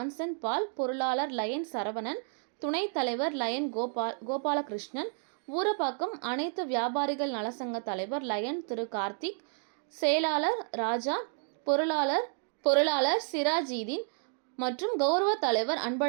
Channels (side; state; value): left; silent; 57 dB below the other